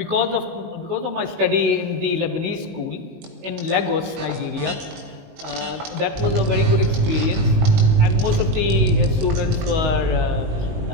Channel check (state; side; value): late; left; 19 ms